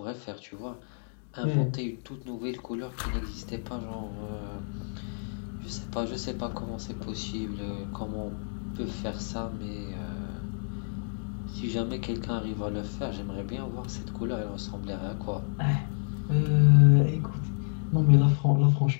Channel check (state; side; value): silent; right; digital silence